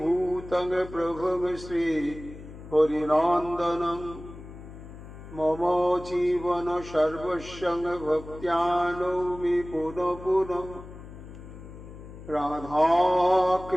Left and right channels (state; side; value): noise; left; hum, 15 dB below the sound